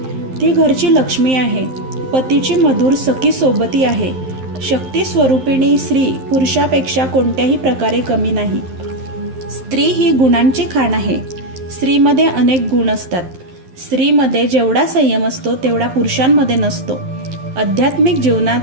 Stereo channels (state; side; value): late; left; 11 ms